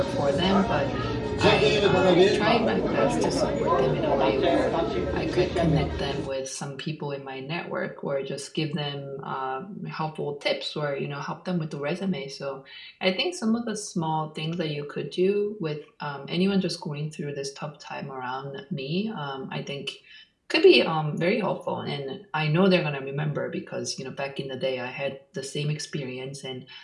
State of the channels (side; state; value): both; identical; correlation 1.00